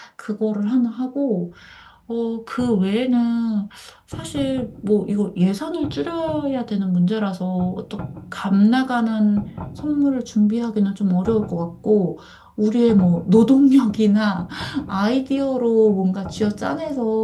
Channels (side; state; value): both; identical; correlation 1.00